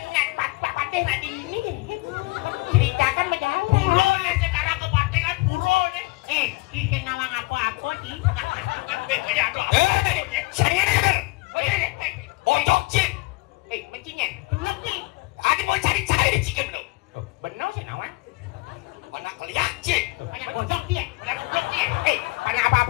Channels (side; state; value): right; quieter; 24.0 dB